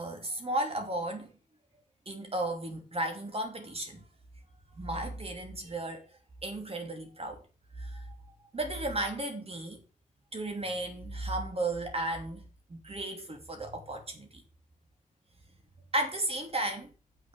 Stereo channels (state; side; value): normal; both; correlation 0.19